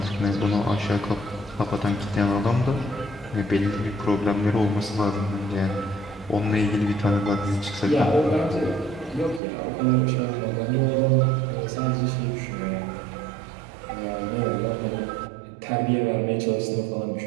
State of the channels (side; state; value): left; drops out; at 9.4 s